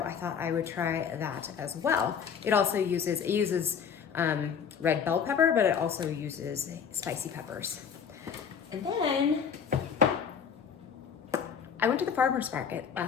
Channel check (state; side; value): quieter; right; 7.1 dB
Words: I thought I would try that as well. It uses red bell pepper, but it also uses spicy peppers. And then I went to the farmer's market